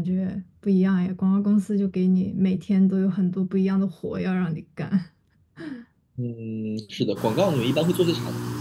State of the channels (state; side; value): identical; both; correlation 1.00